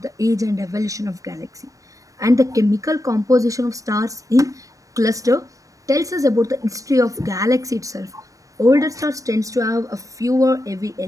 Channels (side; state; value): left; late; 0.16 ms